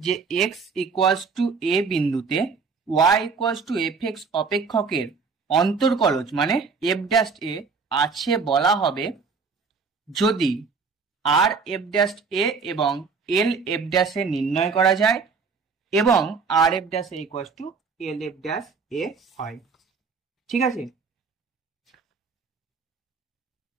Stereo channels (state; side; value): quieter; left; 5.0 dB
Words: যে এক্স ইকুয়ালস টু এ বিন্দুতে y equals to f x অপেক্ষকের অন্তর্কলজ মানে এফ ড্যাশ এ আছে বলা হবে যদি আর এফ ড্যাশ এ এবং এল এফ ড্যাশ এ নির্ণয় করা যায় এবং R f dash a equals to L f dash a হয়। ঠিক আছে,